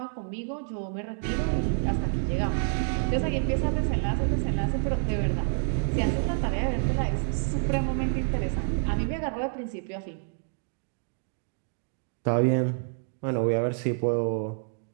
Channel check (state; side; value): silent; left; 59 dB below the other